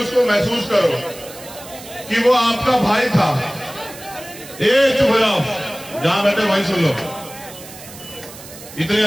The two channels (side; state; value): right; noise; hiss, 16 dB below the sound